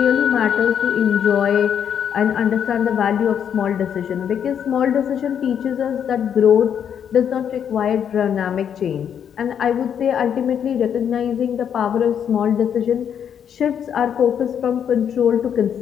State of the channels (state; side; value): quieter; right; 8.5 dB